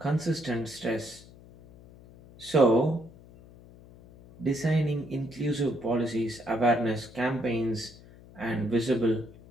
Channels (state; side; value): noise; left; hum, 21 dB below the sound